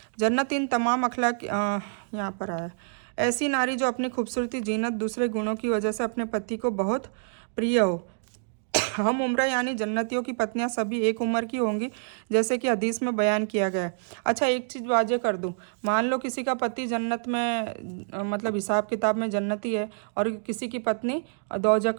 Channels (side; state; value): left; silent; digital silence